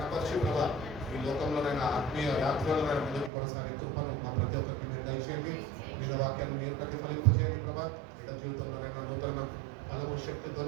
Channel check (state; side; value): drops out; left; at 3.3 s